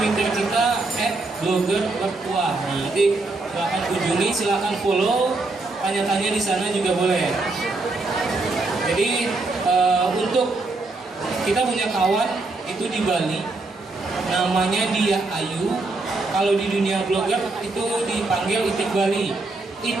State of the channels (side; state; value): left; quieter; 3.3 dB